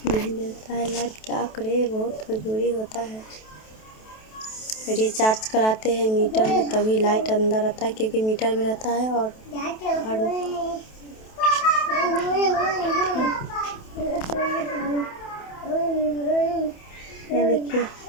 नहीं देता है लाइट। क्या करे, बहुत मजबूरी होता है। रिचार्ज कराते हैं मीटर में तभी लाइट अंदर आता है क्योंकि मीटर में रहता है। और ये देखिए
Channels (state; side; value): late; right; 28 ms